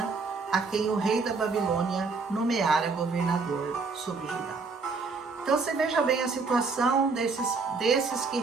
a quem o rei da Babilônia nomeara governador sobre Judá. Então você veja bem a situação desses que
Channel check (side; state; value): left; quieter; 4.4 dB